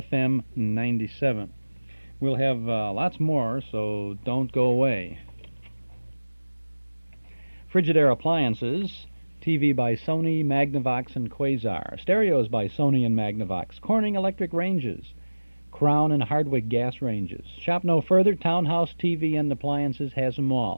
97. We'll have lots more, so don't go away. Frigidaire Appliances, TV by Sony, Magnavox, and Quasar. Stereos by Sony and Magnavox. Corning Electric Ranges. Crown and Hardwick Gas Ranges. Shop no further. Townhouse TV and Appliances has them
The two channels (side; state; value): both; inverted; correlation -1.00